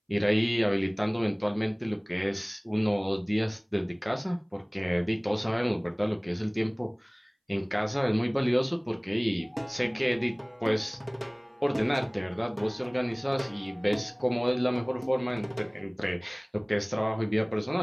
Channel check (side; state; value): both; identical; correlation 1.00